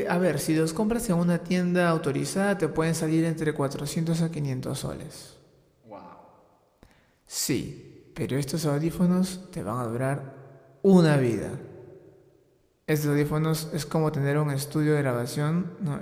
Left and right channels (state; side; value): identical; both; correlation 1.00